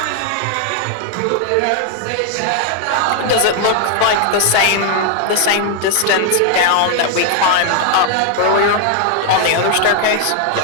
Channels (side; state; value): both; different; correlation 0.00